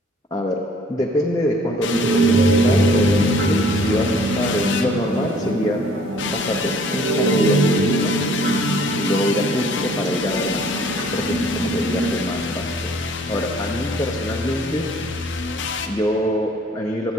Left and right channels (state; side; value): normal; both; correlation 0.57